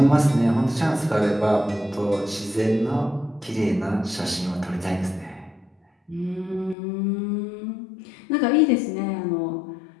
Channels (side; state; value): right; drops out; at 6.8 s